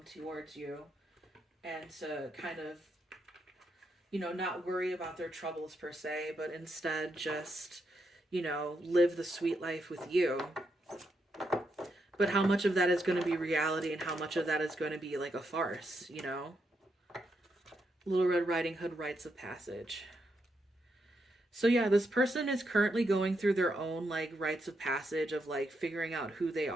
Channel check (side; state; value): both; normal; correlation 0.81